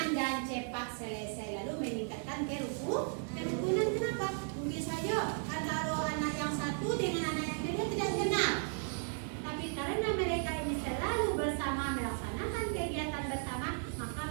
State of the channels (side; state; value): left; silent; 54 dB below the other